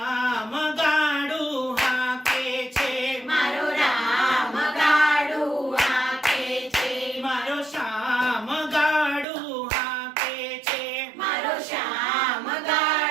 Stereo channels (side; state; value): left; drops out; at 9.2 s